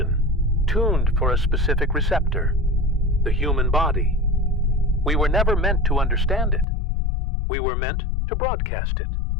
tuned for a specific receptor, the human body. We were never meant to understand it. We were meant to broadcast it.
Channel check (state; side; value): drops out; right; at 6.7 s